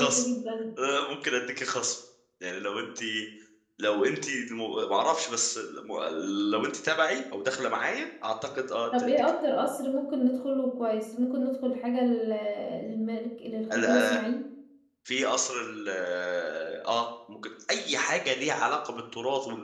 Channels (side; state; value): both; identical; correlation 1.00